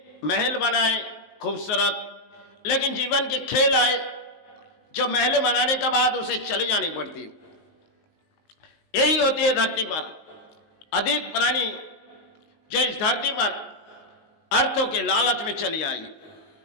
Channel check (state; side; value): late; right; 19 ms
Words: महल बनाए खूबसूरत, लेकिन जीवन के खेल आए जो महल बनाने के बाद उसे चली जानी पड़ती। यही होती है धरती पर अधिक प्राणी जो इस धरती पर अर्थों के लालच में चली आई।